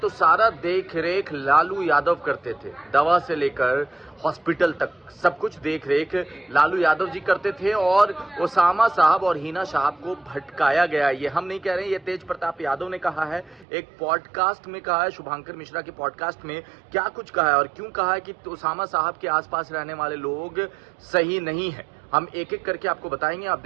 सारा देख रेख लालू यादव करते थे। दवा से लेकर हॉस्पिटल तक सब कुछ देख रेख लालू यादव जी करते थे और ओसामा साहब और हिना साहब को भटकाया गया। ये हम नहीं कह रहे हैं, ये तेज प्रताप यादव ने कहा है, एक पॉडकास्ट में कहा है, शुभांकर मिश्रा के पॉडकास्ट में। क्या कुछ कहा है और क्यों कहा है कि ओसामा साहब के आसपास रहने वाले लोग सही नहीं है, हम एक एक करके आपको बताएंगे। आप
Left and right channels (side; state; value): left; drops out; at 13.7 s